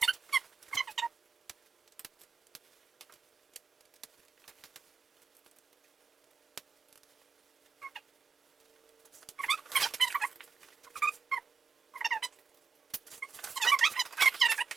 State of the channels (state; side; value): quieter; left; 5.3 dB